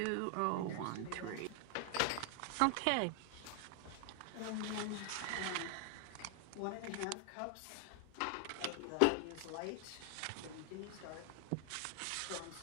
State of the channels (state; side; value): different; both; correlation 0.00